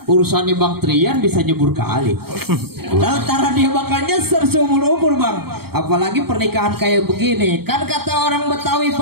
urusannya Bang Trian bisa nyebur kali. Lantaran dia bakal nyeser seumur umur Bang. Apalagi pernikahan kayak begini. Kan kata orang Betawi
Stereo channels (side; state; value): left; late; 0.95 ms